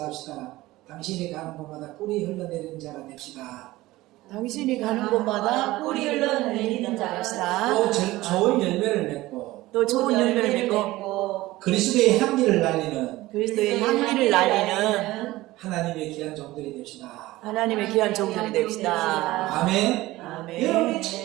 당신이 가는 곳마다 꿀이 흘러내리는 자가 됩시다. 당신이 가는 곳마다 꿀이 흘러내리는 자였다. 또 좋은 열매를 맺고 또 좋은 열매를 맺고 그리스도의 향기를 날리는 그리스도의 향기를 날리는 하나님의 귀한 종들이 됩시다. 하나님의 귀한 종들이 됩시다. 아멘. 아멘. 여러분이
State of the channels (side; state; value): left; quieter; 18.0 dB